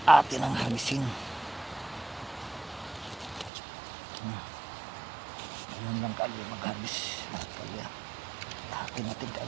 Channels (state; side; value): drops out; left; at 3.5 s